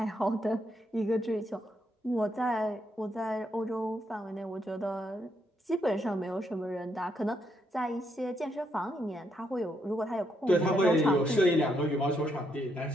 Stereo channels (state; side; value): normal; both; correlation 0.77